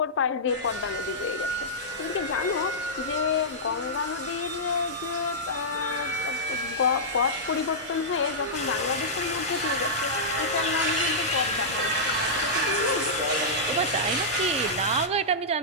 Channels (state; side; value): normal; both; correlation -0.12